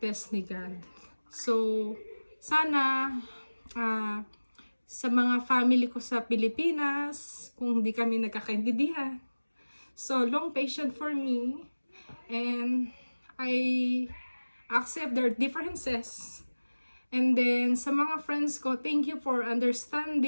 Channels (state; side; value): inverted; both; correlation -1.00